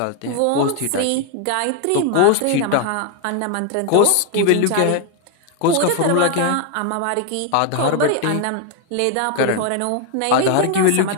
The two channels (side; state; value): both; different; correlation 0.01